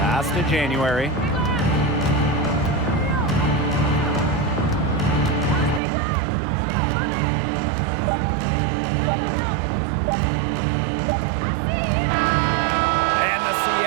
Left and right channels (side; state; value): left; drops out; at 5.8 s